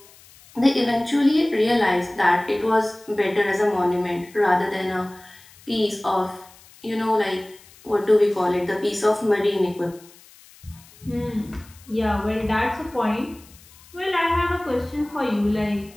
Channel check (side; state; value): left; noise; hiss, 24 dB below the sound